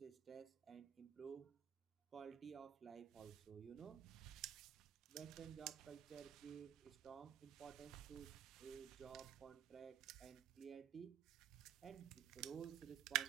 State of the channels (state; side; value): quieter; left; 10.1 dB